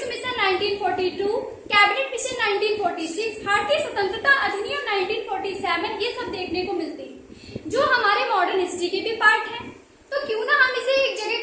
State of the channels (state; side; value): identical; both; correlation 1.00